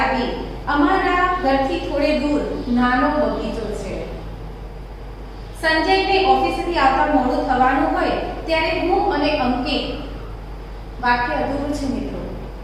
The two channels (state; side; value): identical; both; correlation 1.00